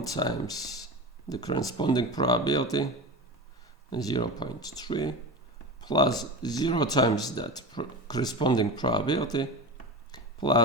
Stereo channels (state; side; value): normal; both; correlation 0.26